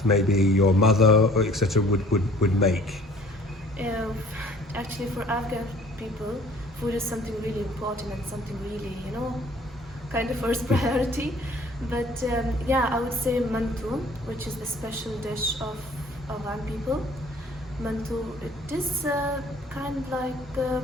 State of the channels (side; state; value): both; normal; correlation 0.53